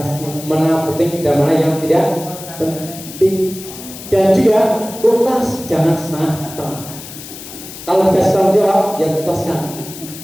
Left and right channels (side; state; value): left; noise; hiss, 13 dB below the sound